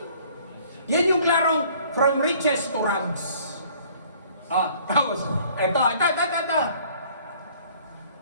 Yan yung klarong from riches to rags. Tapos, eto.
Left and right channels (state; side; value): inverted; both; correlation -0.56